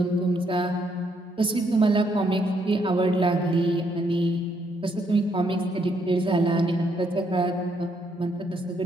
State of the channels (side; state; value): both; normal; correlation 0.73